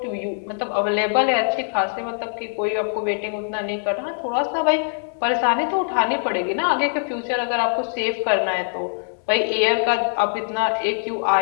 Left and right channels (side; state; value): right; silent; digital silence